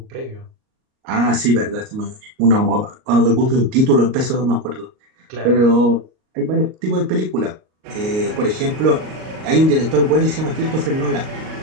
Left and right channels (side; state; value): left; late; 38 ms